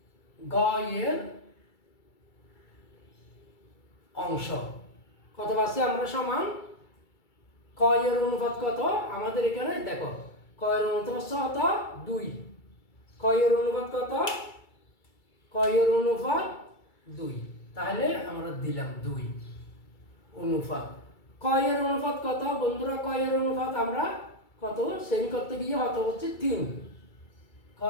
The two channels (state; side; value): late; right; 2.3 ms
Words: গ এর অংশ কত পাচ্ছি আমরা? সমান ক এর অনুপাত কত আমাদের এখানে দেখো, ক এর অনুপাত কত 2, ক এর অনুপাত কত, ক এর অনুপাত 2, তাহলে আমরা দিলাম 2 অনুপাত ক এর অনুপাত কত বন্ধুরা? ক এর অনুপাত আমরা কত সেম করতে গিয়ে কত হচ্ছে 3, ক